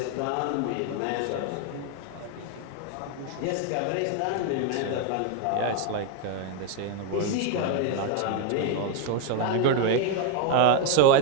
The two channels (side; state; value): both; different; correlation 0.01